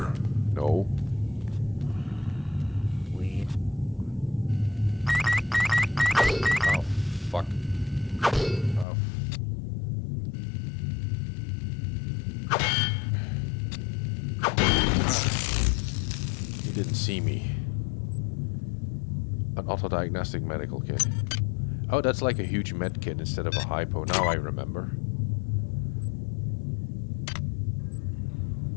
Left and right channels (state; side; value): drops out; right; at 8.8 s